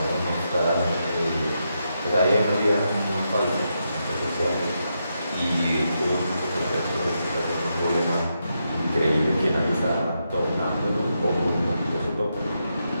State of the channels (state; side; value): inverted; both; correlation -0.84